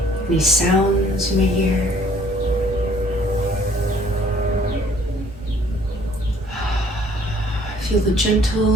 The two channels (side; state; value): both; normal; correlation 0.59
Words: any sounds you may hear. Feel